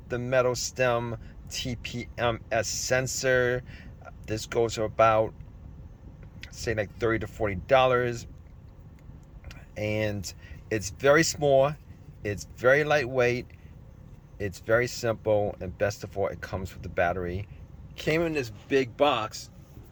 the metal stem TPMS sensor. This goes for about, say, like $30 to $40, and it's very small. It's very lightweight, it's very simple, and best of all, it comes with the battery. Came in this big box,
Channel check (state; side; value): identical; both; correlation 1.00